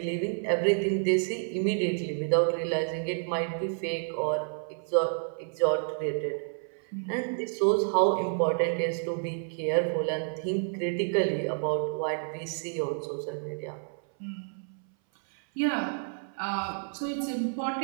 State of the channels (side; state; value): left; silent; 58 dB below the other